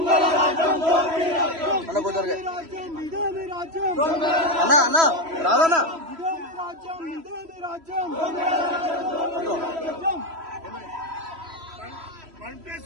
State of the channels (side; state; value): left; late; 3.1 ms